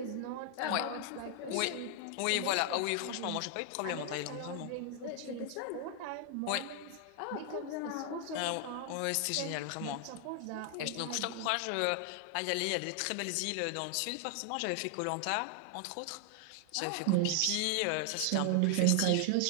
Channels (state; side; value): different; both; correlation 0.00